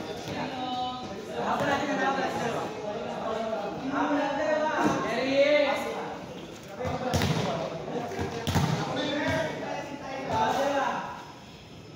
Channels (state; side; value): identical; both; correlation 1.00